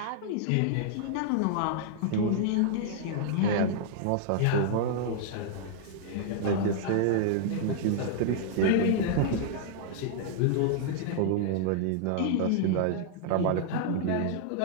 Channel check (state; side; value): different; both; correlation -0.01